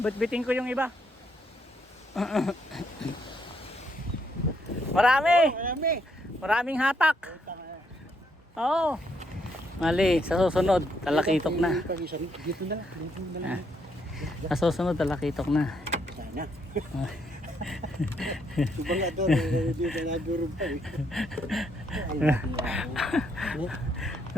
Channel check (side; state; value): both; normal; correlation 0.74